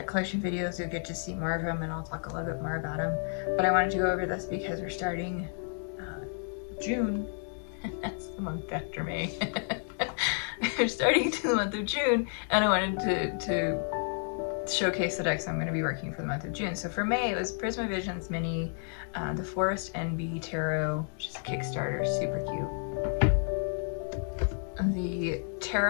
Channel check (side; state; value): right; silent; 57 dB below the other